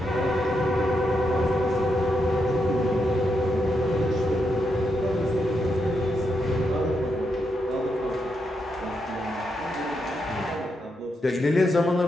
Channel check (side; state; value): both; normal; correlation 0.82